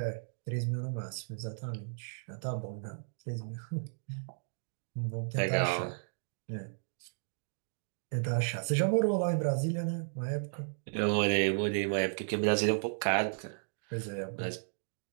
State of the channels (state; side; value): silent; left; digital silence